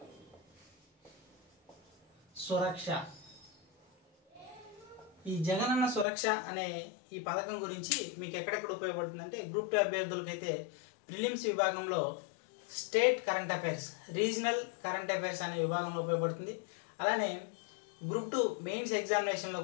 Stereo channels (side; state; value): right; drops out; at 6.1 s